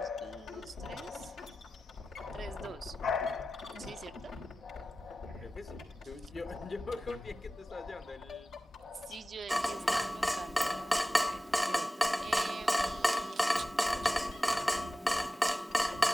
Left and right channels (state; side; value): normal; both; correlation 0.95